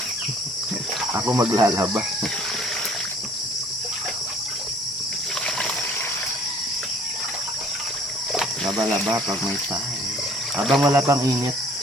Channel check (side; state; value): both; normal; correlation 0.56